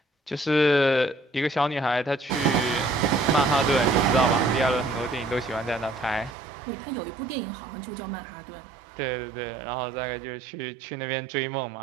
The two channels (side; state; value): left; drops out; at 6.4 s